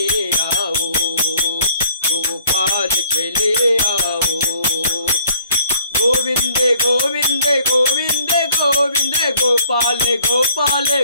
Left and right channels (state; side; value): inverted; both; correlation -0.61